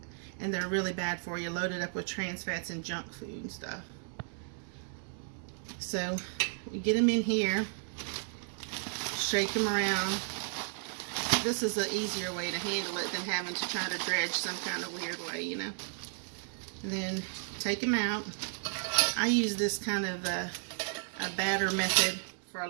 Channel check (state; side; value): silent; left; 55 dB below the other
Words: and they're really bad for you, loaded up with trans fats and junk food and stuff. So we get them in here, shake them around. This is an easier way to handle it than having to try to dredge some kind of weird way, you know. And then take them out. I use this kind of a batter method for a